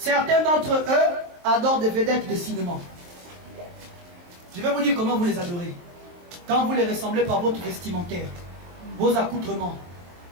d'entre eux adorent des vedettes de cinéma. Je vais vous dire comment vous les adorez. Quand vous les ressemblez par votre vestimentaire, vos accoutrements,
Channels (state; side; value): late; left; 23 ms